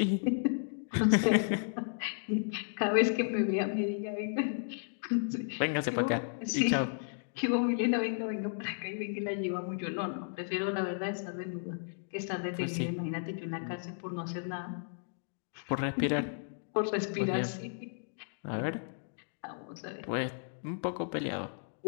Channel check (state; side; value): silent; right; digital silence